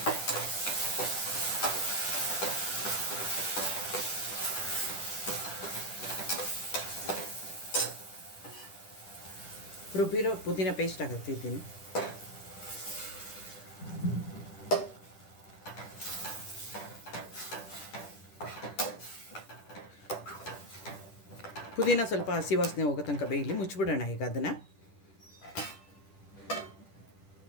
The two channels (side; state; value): right; late; 10 ms